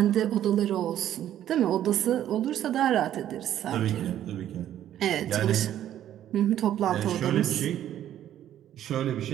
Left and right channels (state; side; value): quieter; left; 11.5 dB